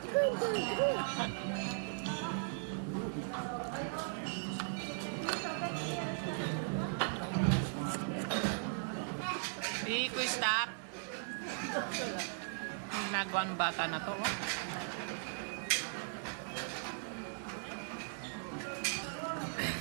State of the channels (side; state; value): left; silent; digital silence